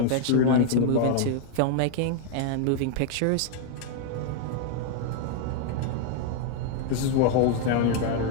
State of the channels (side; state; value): both; different; correlation 0.00